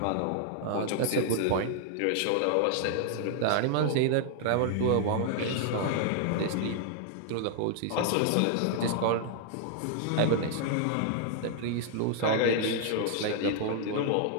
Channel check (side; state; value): both; different; correlation 0.00